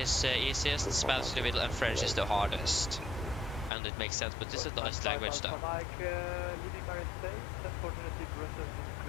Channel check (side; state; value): right; drops out; at 3.7 s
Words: easiest, Spanish in the middle, and French is the hardest. And it makes sense. But this is a nice language, though.